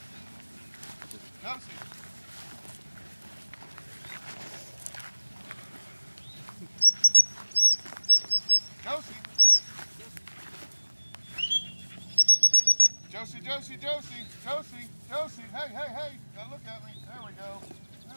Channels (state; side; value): inverted; both; correlation -1.00